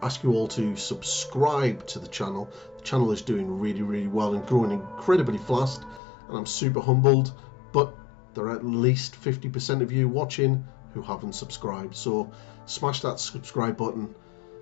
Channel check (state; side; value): drops out; right; at 6.0 s